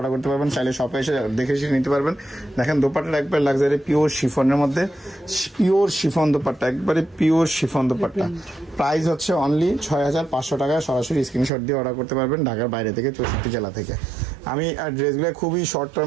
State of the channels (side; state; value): left; drops out; at 11.5 s